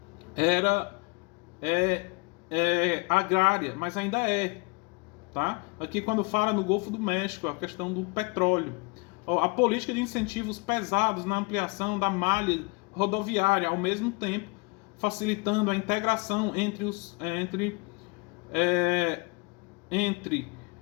era agrária, mas ainda é. Tá? Aqui quando fala no Golfo do México, a questão do petróleo. A política de incentivos pesados na ampliação da malha rodoviária, ao mesmo tempo facilitando a integração entre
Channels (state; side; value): quieter; right; 29.4 dB